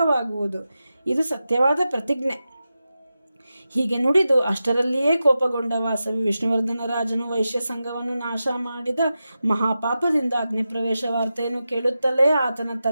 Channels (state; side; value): inverted; both; correlation -0.92